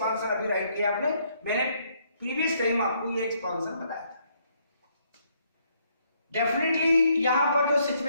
अभी right किया आपने, मैंने प्रीवियस टाइम आपको ये एक्सपांशन बताया था। डेफिनेटली यहां पर जो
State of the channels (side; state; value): both; inverted; correlation -0.70